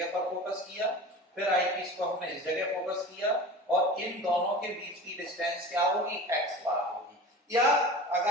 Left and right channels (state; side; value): normal; both; correlation 0.36